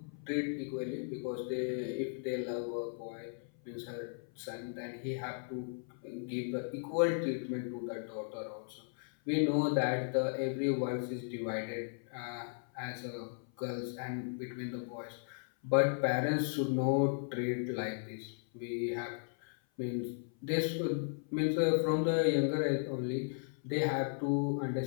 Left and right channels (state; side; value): silent; right; 54 dB below the other